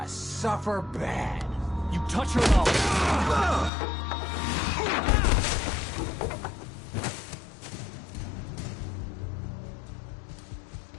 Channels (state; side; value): drops out; right; at 3.7 s